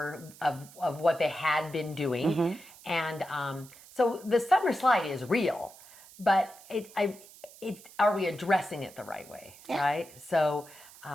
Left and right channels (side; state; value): right; noise; hiss, 21 dB below the sound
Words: of what they had been doing. Mm-hmm. And so the summer slide is real, but are we addressing it the right way? Yeah. Right? So,